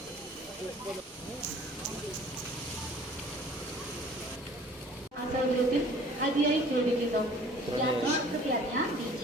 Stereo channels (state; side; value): normal; both; correlation 0.51